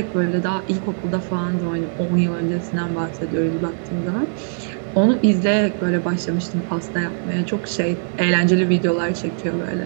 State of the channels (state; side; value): silent; left; 65 dB below the other